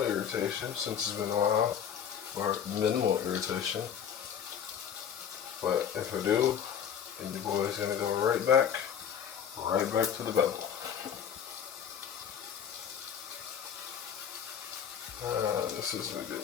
irritation since it's been a while, or minimal irritation. But if I do, then your boy's gonna go right back to the bevel. This isn't a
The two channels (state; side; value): quieter; right; 8.4 dB